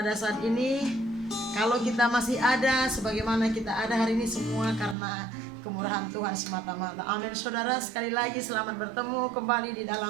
saat ini, kalau kita masih ada sebagaimana kita ada hari ini, semua karena kemurahan Tuhan semata-mata. Amin saudara, sekali lagi selamat bertemu kembali di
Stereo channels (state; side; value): drops out; left; at 5.0 s